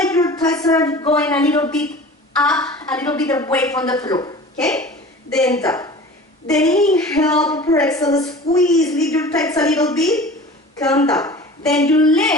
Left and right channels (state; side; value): normal; both; correlation 0.40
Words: your thighs are going a little bit up, a little bit away from the floor, okay? Then down. Then inhale, prepare, exhale, squeeze, lift your thighs a little bit, come down. Then your